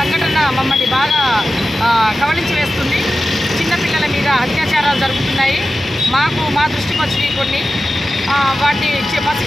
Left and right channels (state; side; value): normal; both; correlation 0.93